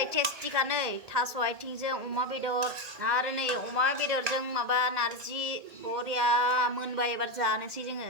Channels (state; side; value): late; left; 2.0 ms